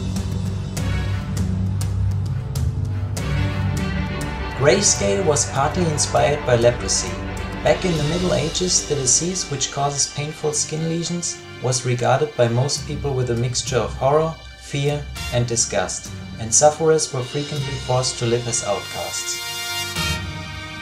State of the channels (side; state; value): both; identical; correlation 1.00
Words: Grayscale was partly inspired by leprosy. Back in the Middle Ages, the disease, which causes painful skin lesions, was regarded by most people with a mixture of horror, fear and disgust, and sufferers were frequently forced to live as outcasts.